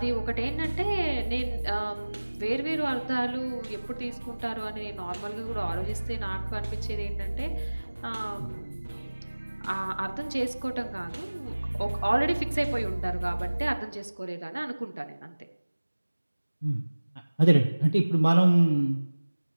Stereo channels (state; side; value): inverted; both; correlation -1.00